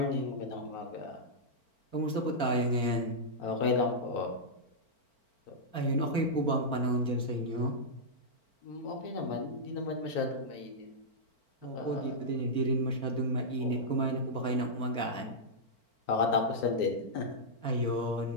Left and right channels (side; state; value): right; late; 4.4 ms